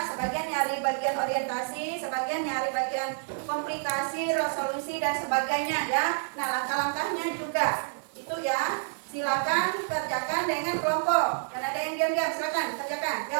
Sebagian nyari bagian orientasi, sebagian nyari bagian komplikasi, resolusi, dan sebagainya ya. Nah, langkah-langkahnya juga itu ya. Silakan kerjakan dengan kelompok. Dan ada yang diam-diam, silakan kerjakan.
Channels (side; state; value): left; silent; 59 dB below the other